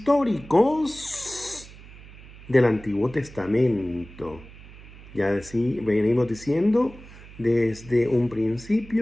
del Antiguo Testamento. Ya venimos diciendo desde un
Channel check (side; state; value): right; noise; hum, 18 dB below the sound